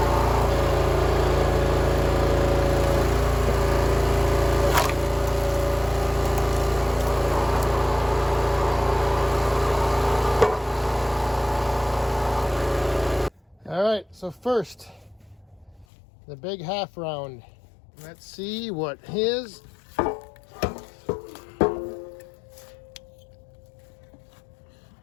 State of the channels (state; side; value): drops out; right; at 15.9 s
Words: All right, so first, the big half round. Let's see what his